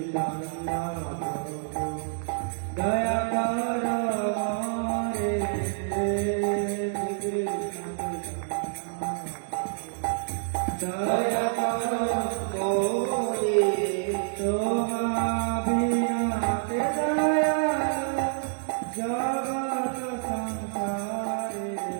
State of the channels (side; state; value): left; silent; 60 dB below the other